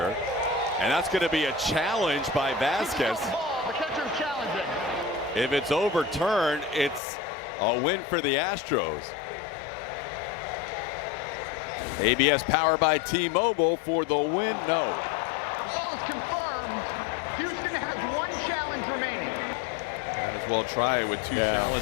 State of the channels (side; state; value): right; drops out; at 7.0 s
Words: And that's going to be a challenge by Vasquez. The catcher's challenging. If it's overturned, it's a win for the Astros. ABS powered by T-Mobile for the win. No. Ball is confirmed. Houston has one challenge remaining. Might as well try it with two